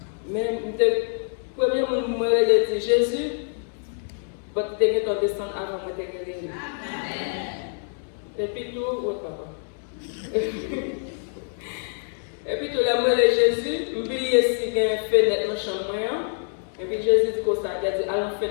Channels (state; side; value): silent; right; digital silence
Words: Mais le premier moment, je dis Jésus, votre dernier temps descendre avant mon dernier. Et puis tout, votre papa. Et puis tout, la moi de Jésus, je oublié si il y a une fenêtre dans la chambre. Et puis Jésus dit comme ça, il a dit, allons